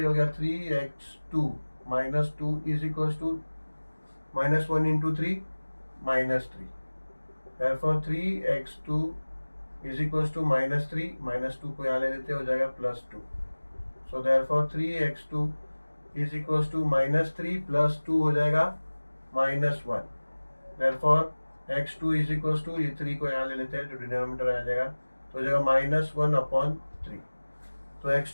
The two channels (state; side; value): inverted; both; correlation -1.00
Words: हो गया 3x2 minus 2 is equals to -1 into 3 -3। Therefore 3x2 is equals to -3, -2 को यहाँ ले लेते हो जाएगा +2। So therefore 3x2 is equals to -3 +2 हो जाएगा -1। Therefore x2 is equals to, ये 3 को यहाँ ले लेते हैं, जो डिनोमिनेटर आ जाएगा, तो हो जाएगा -1/3। तो